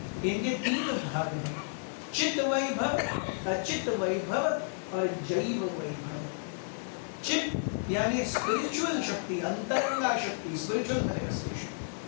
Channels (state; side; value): silent; right; digital silence